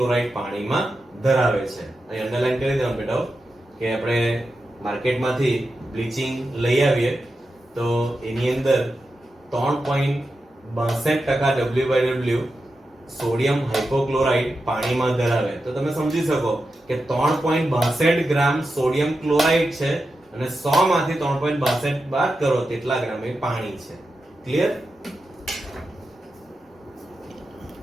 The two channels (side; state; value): both; normal; correlation 0.90